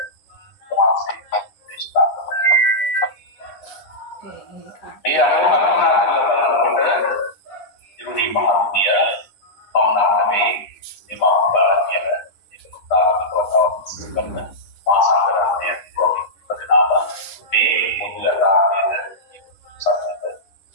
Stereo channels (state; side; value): late; right; 11 ms